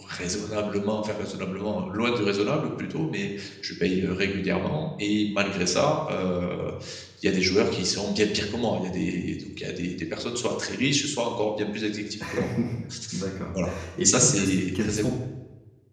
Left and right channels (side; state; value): both; identical; correlation 1.00